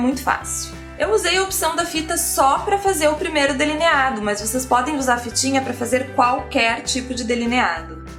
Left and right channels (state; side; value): identical; both; correlation 1.00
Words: fácil. Eu usei a opção da fita só para fazer o primeiro delineado, mas vocês podem usar a fitinha para fazer qualquer tipo de delineado.